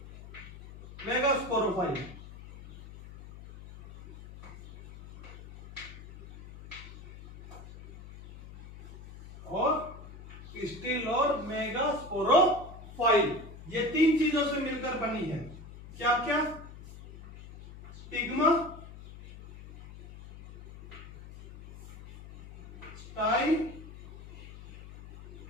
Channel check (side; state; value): left; noise; hum, 16 dB below the sound